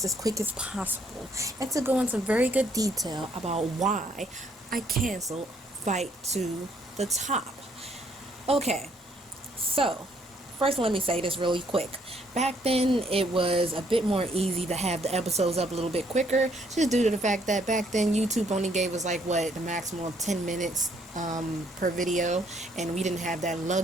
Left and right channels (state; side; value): normal; both; correlation 0.68